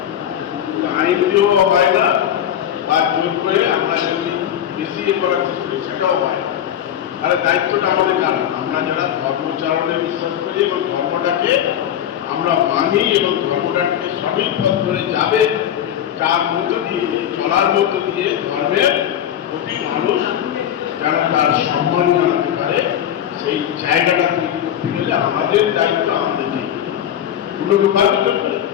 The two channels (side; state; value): right; quieter; 10.3 dB